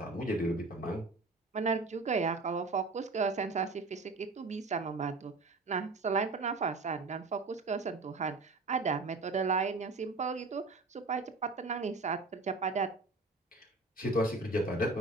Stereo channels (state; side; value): quieter; left; 3.5 dB